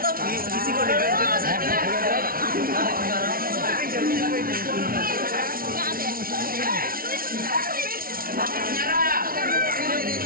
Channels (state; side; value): late; left; 0.43 ms